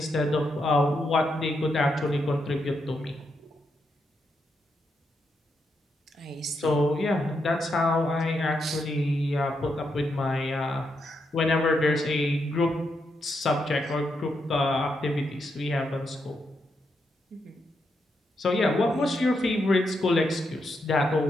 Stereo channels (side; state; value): both; normal; correlation 0.81